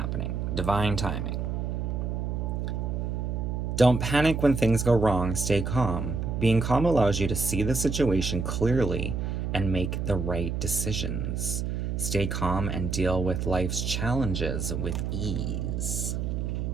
Divine timing. Don't panic when things go wrong. Stay calm. Being calm allows you to see the situation clearly and make the right decisions. Stay calm and deal with life's challenges with ease.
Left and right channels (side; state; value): right; noise; hum, 2 dB below the sound